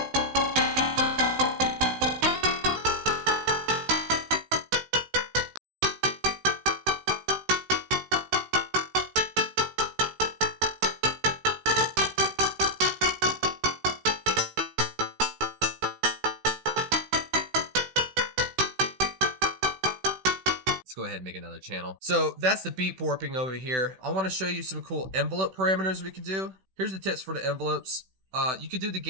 Go ahead and make another channel. So that's the beat warping over here. I want to show you some cool envelope parameters we can do. Here's the tips for the envelopes. You could do the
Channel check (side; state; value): left; late; 16 ms